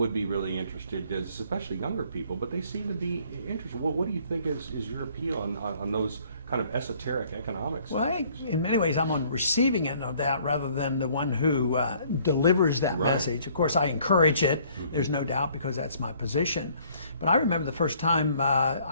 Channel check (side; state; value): both; inverted; correlation -0.60